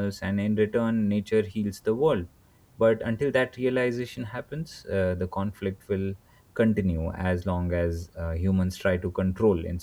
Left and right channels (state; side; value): identical; both; correlation 1.00